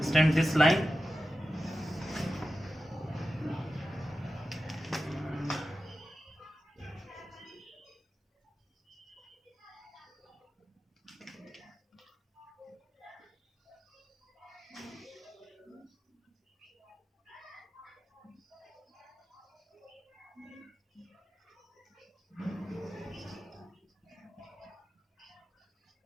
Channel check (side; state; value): both; normal; correlation 0.92